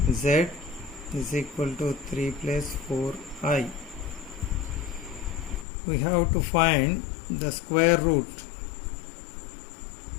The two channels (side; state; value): right; drops out; at 5.7 s